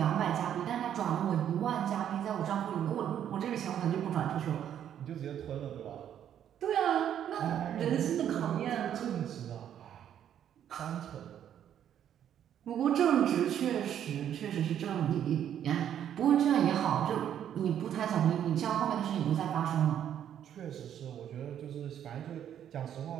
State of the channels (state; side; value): quieter; left; 9.9 dB